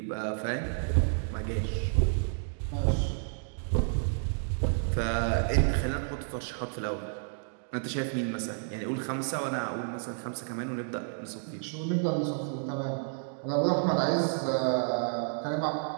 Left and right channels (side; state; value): left; silent; digital silence